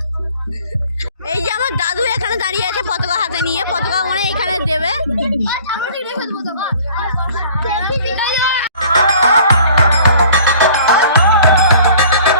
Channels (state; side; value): inverted; both; correlation -0.51